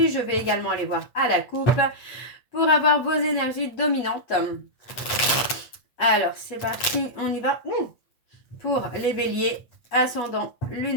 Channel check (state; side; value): late; right; 8.2 ms